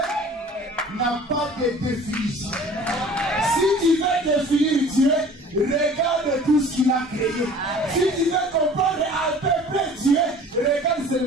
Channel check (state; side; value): normal; both; correlation 0.47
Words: n'a pas de définition. Si tu veux définir Dieu, regarde tout ce qu'il a créé. Si tu veux comprendre à peu près Dieu, regarde